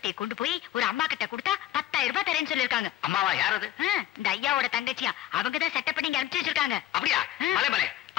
கொண்டு போய் ஒரு அம்மா கிட்ட கொடுத்தா 10,000 ரூபாய் தரேன்னு சொல்லிருக்காங்க. அம்மாவா? யாரது? இந்த ஐயாவோட தங்கச்சியா, அவங்கதான் செட்டப் பண்ணி அனுப்பிச்சு வச்சிருக்காங்க. அப்படியா? பலே.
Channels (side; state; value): right; quieter; 13.4 dB